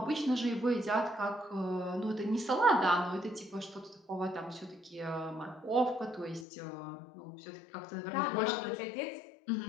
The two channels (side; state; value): right; drops out; at 6.5 s